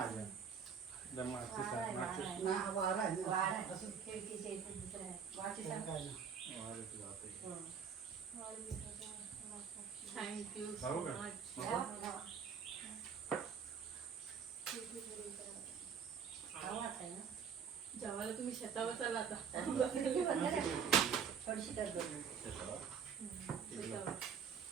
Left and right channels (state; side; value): quieter; left; 6.8 dB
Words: थँक्यू सो मच. जेवायला तुम्ही शेतावर चाला आता.